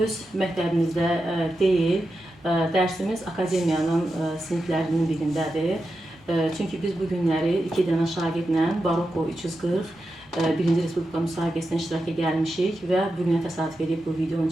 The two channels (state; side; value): normal; both; correlation 0.89